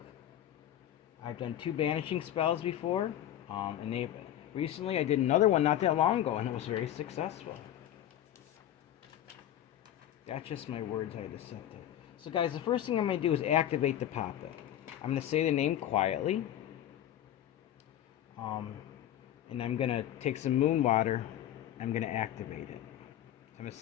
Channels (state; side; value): quieter; right; 11.8 dB